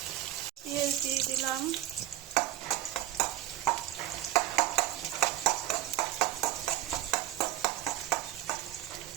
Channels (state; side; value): quieter; left; 14.1 dB